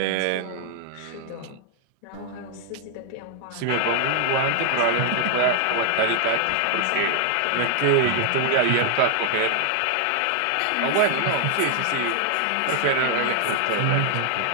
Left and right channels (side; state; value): both; different; correlation 0.00